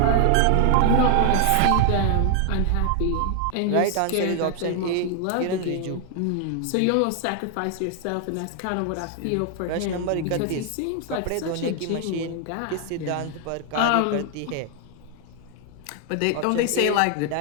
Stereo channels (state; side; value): different; both; correlation 0.00